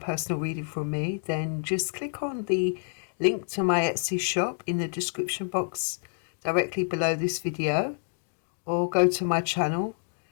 reading from me, then just click on the link to my Etsy shop in the description box directly below this video, or go to my channel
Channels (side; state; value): right; silent; digital silence